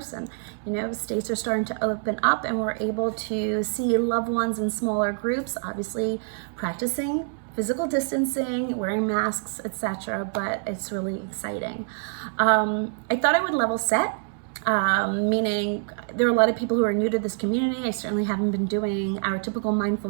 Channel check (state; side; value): silent; left; 61 dB below the other